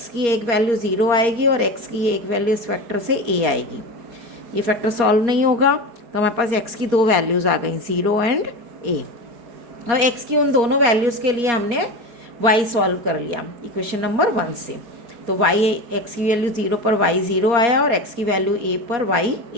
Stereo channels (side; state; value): left; late; 4.2 ms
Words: की एक वैल्यू 0 आएगी और x की एक वैल्यू इस फैक्टर से a आएगी। ये फैक्टर सॉल्व नहीं होगा, तो हमारे पास x की दो वैल्यूज़ आ गई, 0 एंड a। अब x की उन दोनों वैल्यूज़ के लिए हमने y सॉल्व कर लिया इक्वेशन नंबर 1 से। तो x की वैल्यू 0 पर y 0 आया और x की वैल्यू a पर y